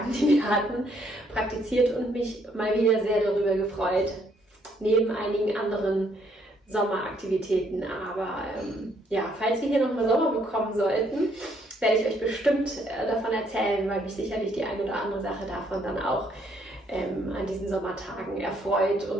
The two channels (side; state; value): both; normal; correlation 0.69